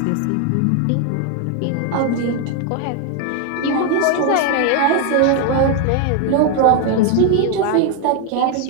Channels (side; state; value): both; different; correlation 0.01